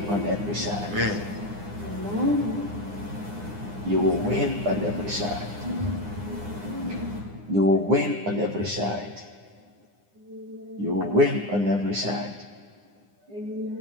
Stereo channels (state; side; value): late; left; 9.8 ms